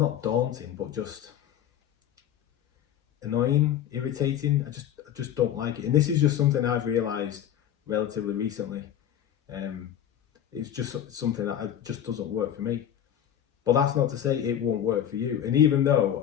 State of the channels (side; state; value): right; quieter; 10.3 dB